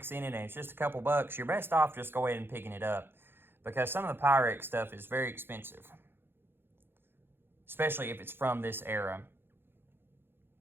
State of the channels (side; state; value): left; late; 0.10 ms